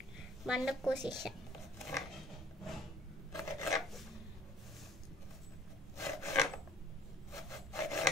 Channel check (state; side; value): normal; both; correlation 0.55